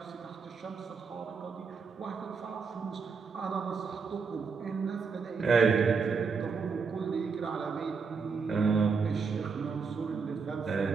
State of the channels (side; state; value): left; quieter; 5.2 dB